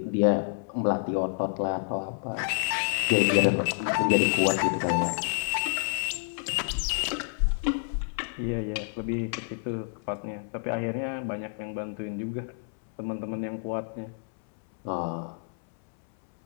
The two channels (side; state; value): right; silent; 59 dB below the other